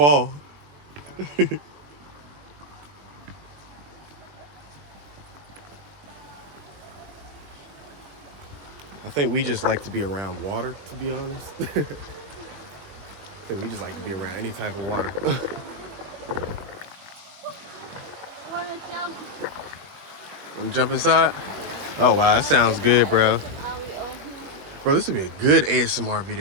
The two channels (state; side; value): late; left; 21 ms